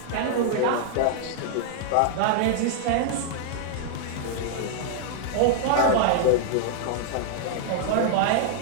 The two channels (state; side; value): different; both; correlation -0.01